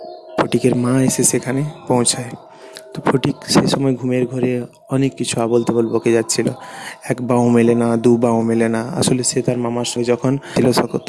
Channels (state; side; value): identical; both; correlation 1.00